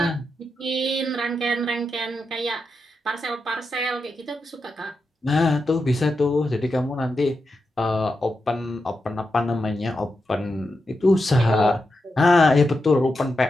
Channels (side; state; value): both; normal; correlation 0.87